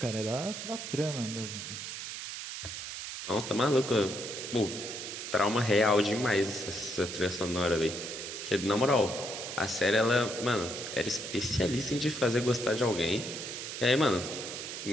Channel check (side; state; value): right; noise; hiss, 7 dB below the sound